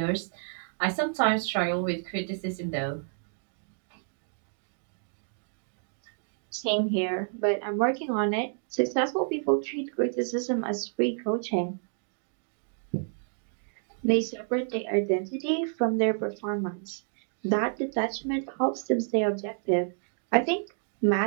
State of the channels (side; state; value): left; silent; 58 dB below the other